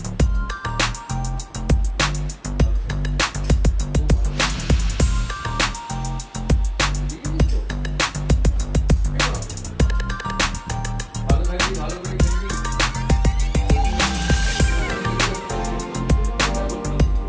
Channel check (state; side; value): identical; both; correlation 1.00